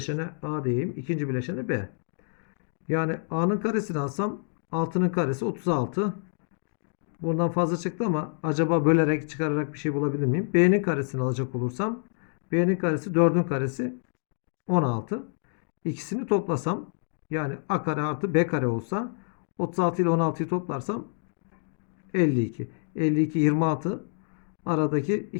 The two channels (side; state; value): right; silent; digital silence